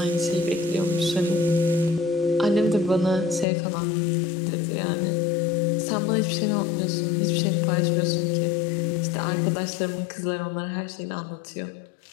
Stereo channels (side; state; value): right; drops out; at 3.5 s